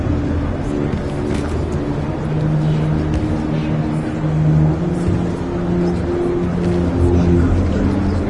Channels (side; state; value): both; identical; correlation 1.00